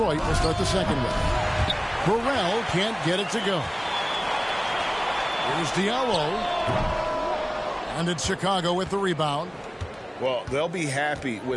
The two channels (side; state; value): both; identical; correlation 1.00